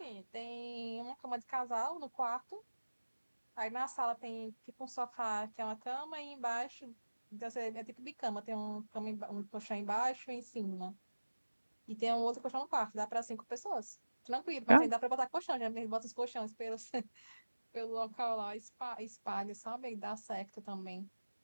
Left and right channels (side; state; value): both; inverted; correlation -1.00